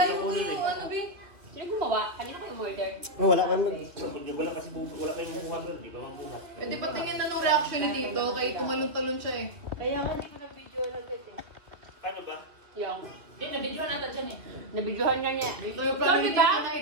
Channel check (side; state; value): left; late; 2.5 ms